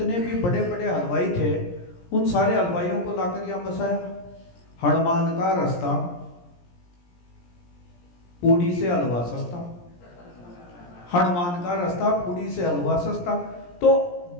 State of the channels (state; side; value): late; right; 17 ms